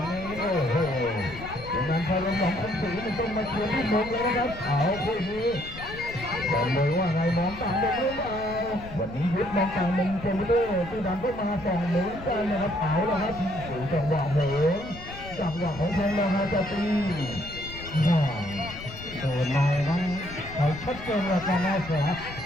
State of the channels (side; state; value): left; noise; rumble, 14 dB below the sound